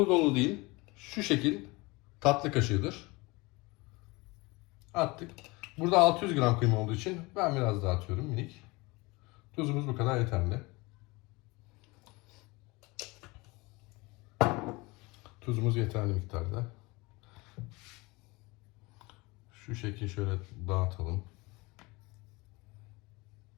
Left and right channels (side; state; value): right; quieter; 24.2 dB